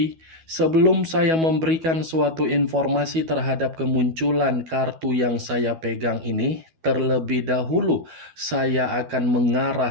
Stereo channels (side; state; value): left; late; 12 ms